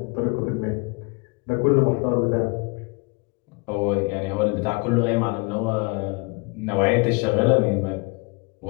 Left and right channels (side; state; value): right; quieter; 29.6 dB